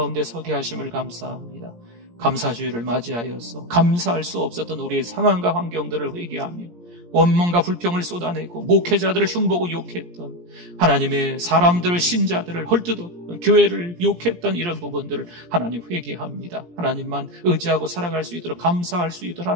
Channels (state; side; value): late; left; 17 ms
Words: 서게 하심을 감사합니다. 감사주의를 맞이하여서 감사할 수 없었던 우리의 상황과 환경들을 회개하며 원망과 불평을 쏟아내고 목회자들을 흉보고 욕했던, 하나님의 사람들을, 신자들을 헐뜯었던, 교회를 욕했던 이런 부분들을 하나님 회개합니다. 하나님만 의지하고 살아갈 수 있도록, 감사할 수 있도록